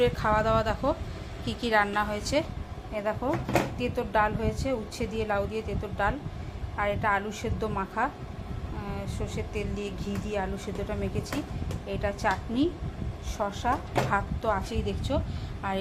খাওয়া দাওয়া দেখো কি কি রান্না হয়েছে। এ দেখো তেঁতোর ডাল হয়েছে, উচ্ছে দিয়ে লাউ দিয়ে তেঁতোর ডাল। আর এটা আলু সেদ্ধ মাখা, সর্ষের তেল দিয়ে ঘি দিয়ে আলু সেদ্ধটা মেখেছি। এটা চাটনি, শসা, ভাত তো আছেই দেখছো। আর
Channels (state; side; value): identical; both; correlation 1.00